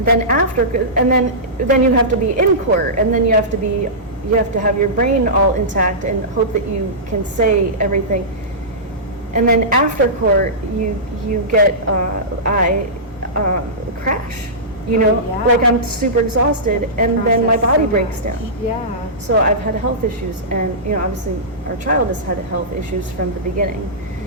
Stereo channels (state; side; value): normal; both; correlation -0.17